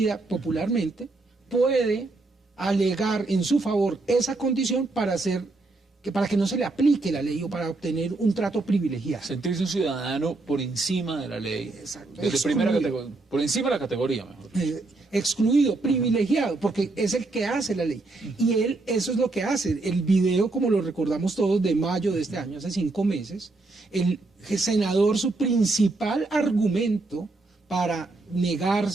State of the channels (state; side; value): quieter; left; 3.3 dB